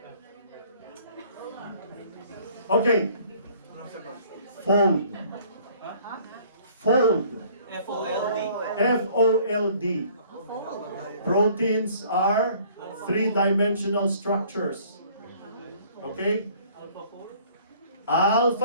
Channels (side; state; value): both; inverted; correlation -0.56